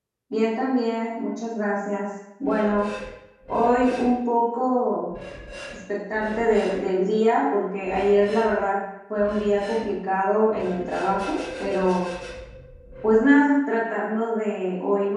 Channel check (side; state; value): both; identical; correlation 1.00